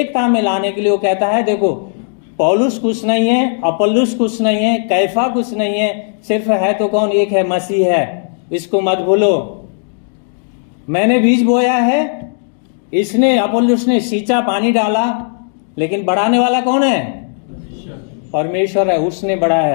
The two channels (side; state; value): right; silent; digital silence